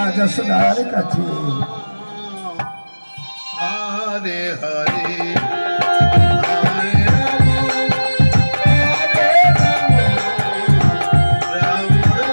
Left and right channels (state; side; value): inverted; both; correlation -1.00